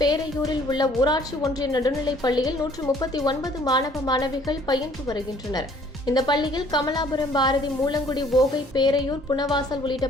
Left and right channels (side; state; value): both; normal; correlation 0.58